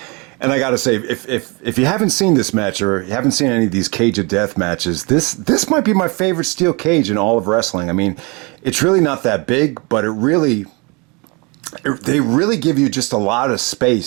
And I got to say, if you haven't seen this match, or you haven't seen any of these Cage of Death matches, this might be my favorite steel cage in all of wrestling. I mean, it's really not that big, but they really give you just a lot of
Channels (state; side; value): quieter; left; 29.4 dB